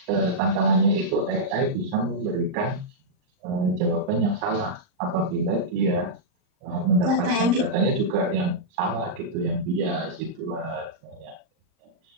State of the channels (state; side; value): late; left; 38 ms